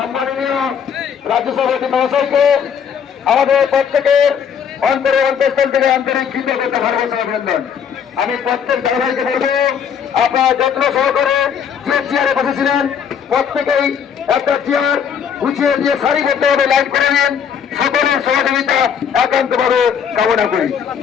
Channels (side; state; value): right; quieter; 7.6 dB